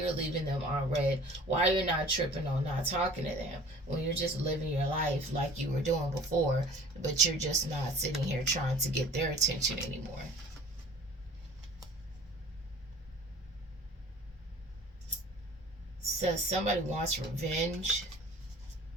leaving them on red, why you're not tripping on not talking to them when you're just living your life like you were doing before, but you're just not sitting here trying to get their attention anymore. Says somebody wants revenge.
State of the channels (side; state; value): both; normal; correlation 0.46